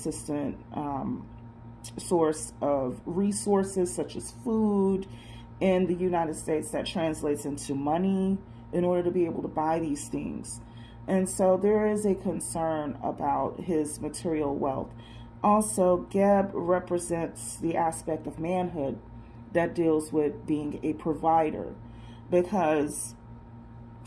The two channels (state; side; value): identical; both; correlation 1.00